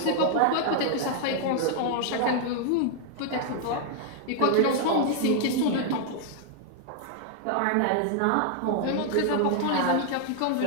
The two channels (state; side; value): different; both; correlation 0.00